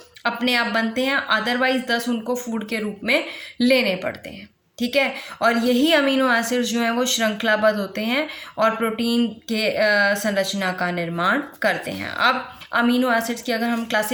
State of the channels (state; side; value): identical; both; correlation 1.00